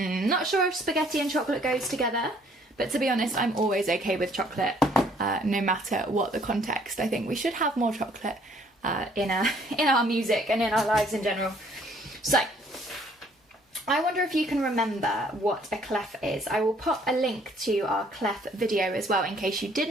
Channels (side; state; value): both; normal; correlation 0.61